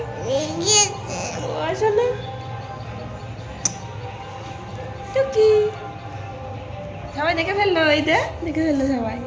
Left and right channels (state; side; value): identical; both; correlation 1.00